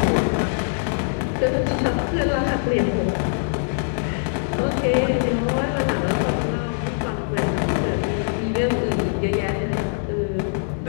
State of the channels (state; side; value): silent; right; 64 dB below the other